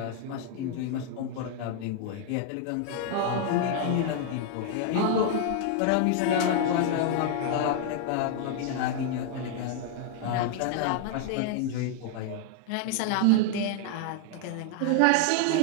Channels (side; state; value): both; different; correlation 0.00